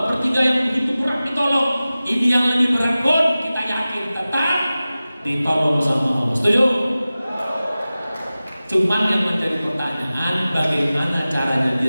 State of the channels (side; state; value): both; inverted; correlation -0.96